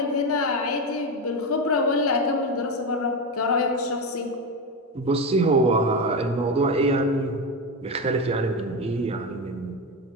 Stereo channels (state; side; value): normal; both; correlation 0.15